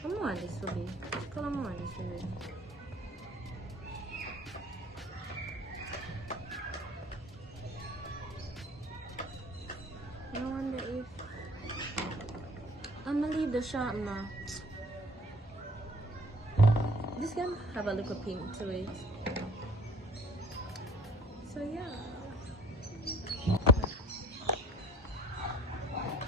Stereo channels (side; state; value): both; normal; correlation 0.53